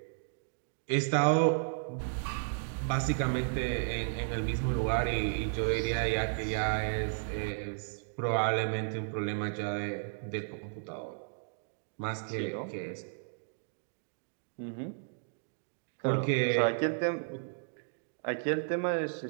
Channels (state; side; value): silent; left; digital silence